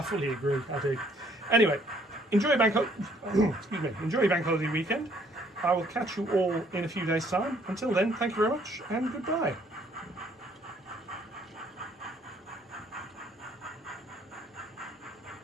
fully agree, I do. Anyway, enjoy your enjoy your bank holiday weekend. I will catch you all in a few days' time. Until then, thank you very much and goodbye.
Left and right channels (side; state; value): both; normal; correlation 0.63